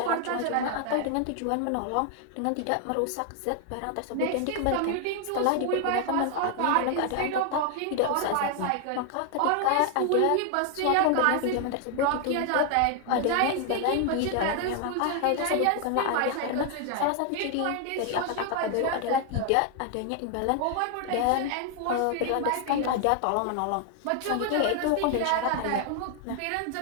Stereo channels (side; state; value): both; different; correlation 0.00